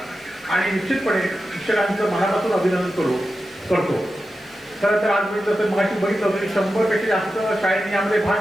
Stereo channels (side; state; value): left; noise; hiss, 30 dB below the sound